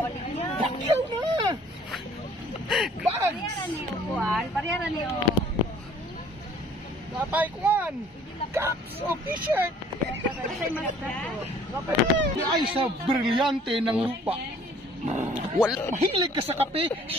Pakyaw na! Bags! Parehara niyo. Napay kuwan! Caps o t-shirt! Ay sa brilyante ng lupa. Mahilig ka sa kape,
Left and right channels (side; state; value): both; normal; correlation 0.55